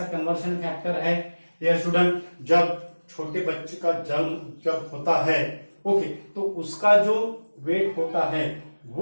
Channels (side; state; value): both; inverted; correlation -1.00